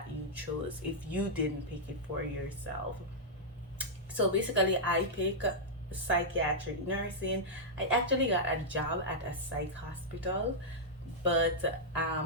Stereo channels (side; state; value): both; normal; correlation -0.08